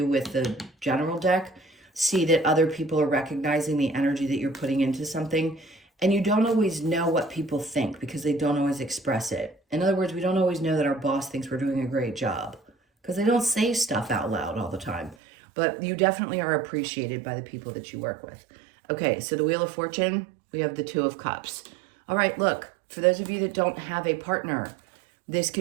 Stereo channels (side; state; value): left; drops out; at 15.2 s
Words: with the general deck. See that other people are recognizing the energy that you're putting into something. And you don't always know what people think because they don't always express it. In other words, we don't always know that our boss thinks we're doing a great job because they don't say stuff out loud all the time. But you definitely are appreciated by the people that you work with. Okay, so the Wheel of Fortune, we have the 2 of Cups. All right, look, for those of you that don't have a partner, this